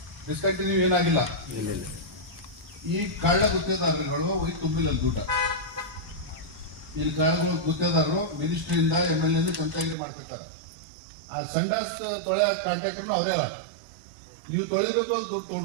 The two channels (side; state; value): left; drops out; at 10.0 s